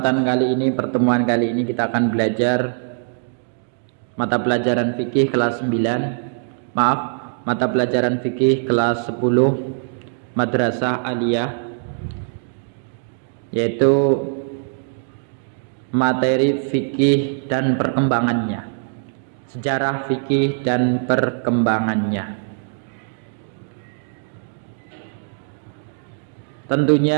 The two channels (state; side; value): silent; left; digital silence